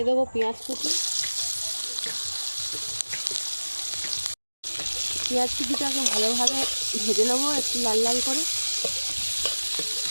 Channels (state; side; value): inverted; both; correlation -1.00